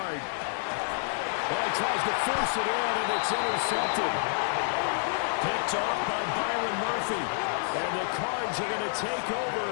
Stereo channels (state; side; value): silent; right; 59 dB below the other